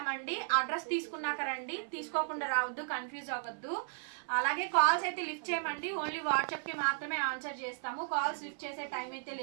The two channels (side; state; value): left; silent; 54 dB below the other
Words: అడ్రస్ తీసుకున్నాక రండి, తీసుకోకుండా రావద్దు, కన్ఫ్యూజ్ అవ్వద్దు. అలాగే కాల్స్ అయితే లిఫ్ట్ చేయమండి, ఓన్లీ వాట్సాప్ కి మాత్రమే ఆన్సర్ చేస్తాము. కాల్స్ లిఫ్ట్ చేసే టైం అయితే